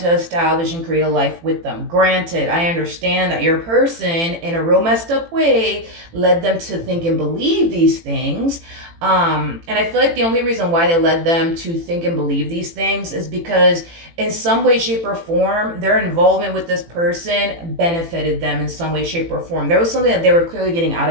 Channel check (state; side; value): late; left; 18 ms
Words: establish and create a life with them. Granted, I understand that your person, in a real messed up way, led them to think and believe these things. And I feel like the only reason why they led them to think and believe these things is because in some way, shape, or form, their involvement with this person benefited them in some way, shape, or form. There was something that they were clearly getting out